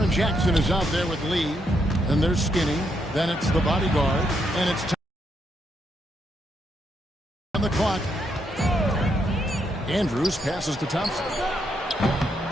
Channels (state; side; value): normal; both; correlation 0.78